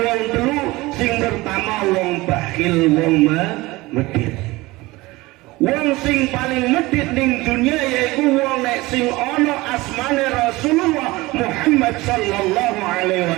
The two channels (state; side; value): quieter; left; 20.7 dB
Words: telu, sing pertama wong bakhil, wong medhit. Wong sing paling medhit ning dunya yaiku wong nek sing ana asmane Rasulullah Muhammad sallallahu alaihi